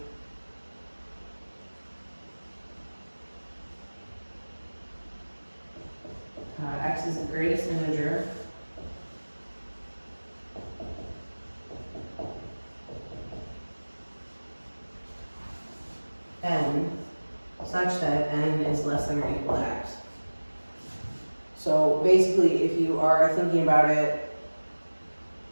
x is the greatest integer. N such that n is less than or equal to x. So basically, if you are thinking about it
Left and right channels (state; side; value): inverted; both; correlation -1.00